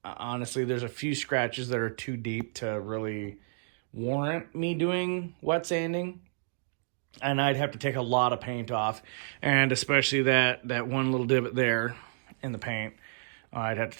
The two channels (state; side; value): silent; left; digital silence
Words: honestly, there's a few scratches that are too deep to really warrant me doing wet sanding. And I'd have to take a lot of paint off. And especially that one little divot there in the paint, I'd have to